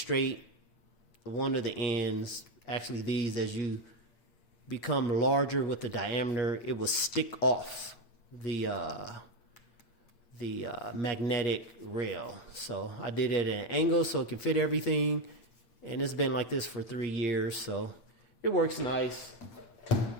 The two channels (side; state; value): right; late; 8.4 ms